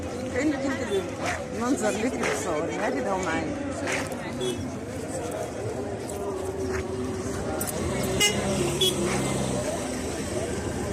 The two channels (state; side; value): identical; both; correlation 1.00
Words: كأنك انت المنظر ليكي بتصوري عادي ده هو معايا.